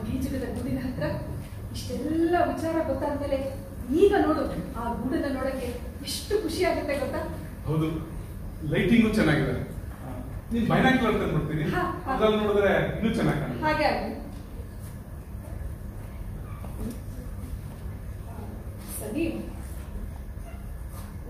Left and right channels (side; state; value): both; identical; correlation 1.00